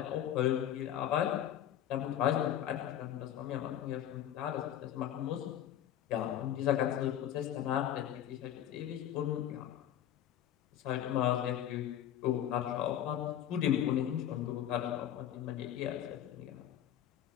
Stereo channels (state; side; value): quieter; right; 10.9 dB